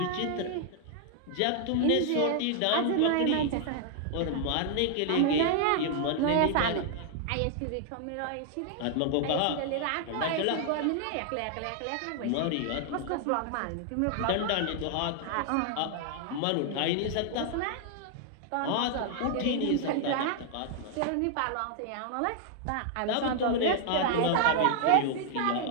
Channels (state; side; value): different; both; correlation 0.00